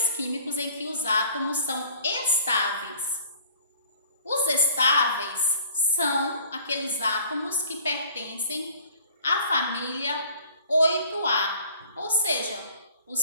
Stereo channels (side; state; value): both; inverted; correlation -0.50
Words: químicos em que os átomos são estáveis. Os estáveis são aqueles átomos que pertencem à família 8A, ou seja,